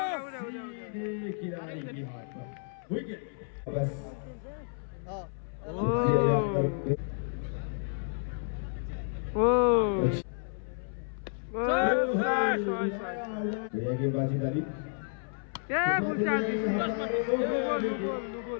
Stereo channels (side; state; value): right; silent; 57 dB below the other